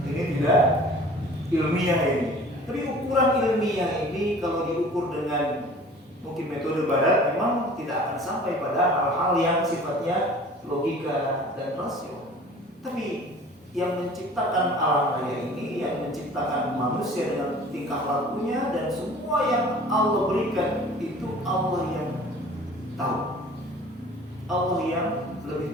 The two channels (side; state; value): both; normal; correlation 0.46